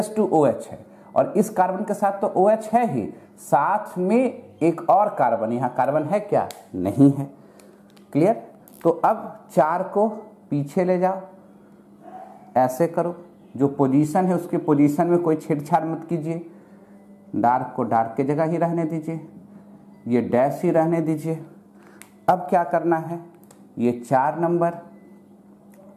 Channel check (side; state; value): both; identical; correlation 1.00